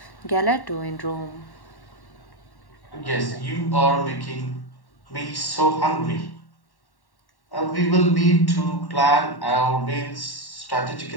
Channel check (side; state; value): right; late; 1.1 ms